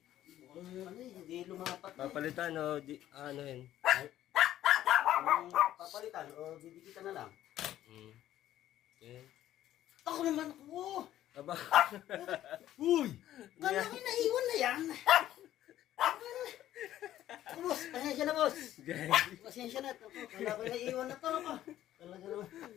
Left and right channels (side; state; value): right; quieter; 12.9 dB